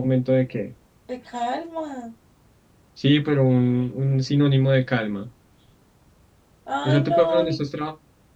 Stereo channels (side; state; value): both; identical; correlation 1.00